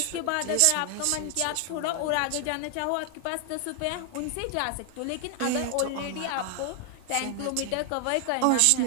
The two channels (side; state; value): both; different; correlation 0.00